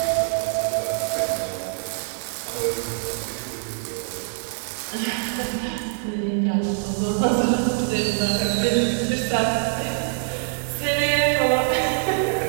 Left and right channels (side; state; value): left; silent; digital silence